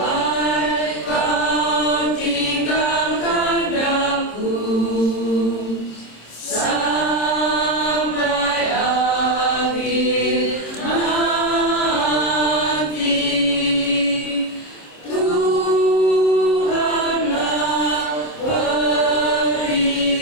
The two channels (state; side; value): late; right; 27 ms